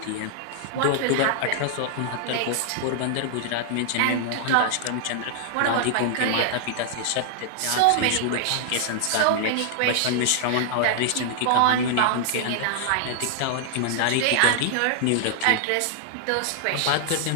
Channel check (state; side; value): different; both; correlation -0.01